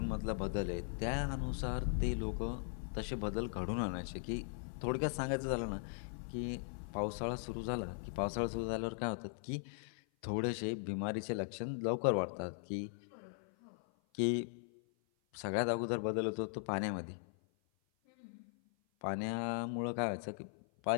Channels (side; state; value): right; silent; 52 dB below the other